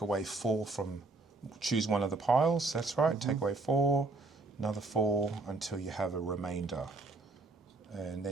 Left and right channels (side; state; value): left; quieter; 3.2 dB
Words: 4 from, choose one of the piles. That's right. Take away 4, another 4 until you have a remainder, and